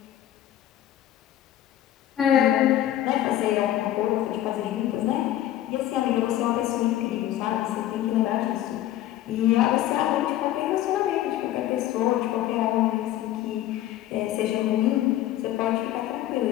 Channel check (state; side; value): quieter; right; 13.1 dB